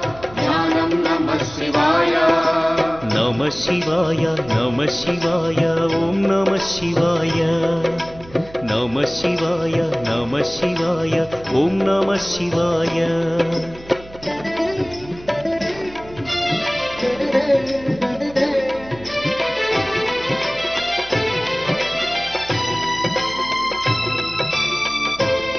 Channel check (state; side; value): noise; right; hum, 20 dB below the sound